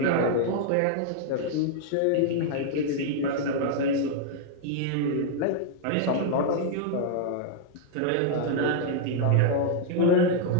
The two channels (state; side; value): different; both; correlation 0.00